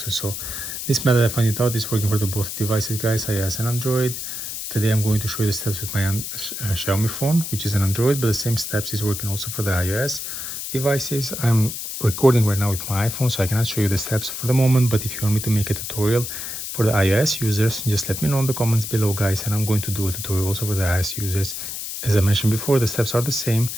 So this method I found it out is working for the both devices, guys, iOS and Android. Today I'm going to show you the steps with my Xiaomi phone, which is an Android, but the same steps is working also for the iOS devices. I'm recording right now with my iPhone, so I cannot show you the steps for the moment, but if you want me to make a tutorial for the iOS users, just let me know in the comments below, guys, and I'm going to do a tutorial also for the iOS users. As I mentioned before, the steps are the same,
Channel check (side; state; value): left; noise; hiss, 6 dB below the sound